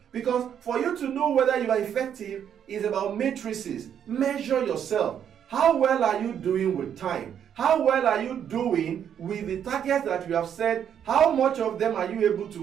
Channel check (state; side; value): quieter; left; 8.9 dB